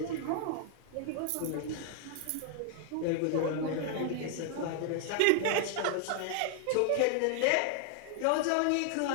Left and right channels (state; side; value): different; both; correlation 0.00